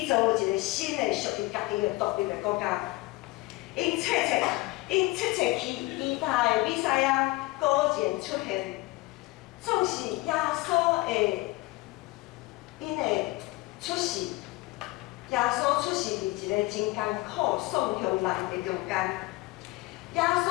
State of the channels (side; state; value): right; quieter; 21.1 dB